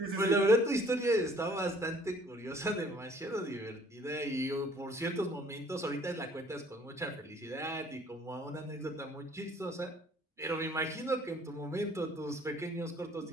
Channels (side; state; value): both; normal; correlation 0.57